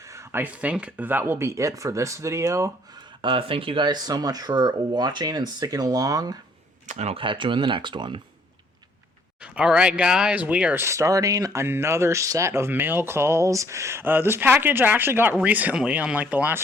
I think that will be it for this video. Thank you guys so much for watching and sticking along, and I'll catch you in the next one. Alright guys, we are starting another set of mail calls. This package I actually got recently, unlike the last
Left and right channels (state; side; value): normal; both; correlation 0.63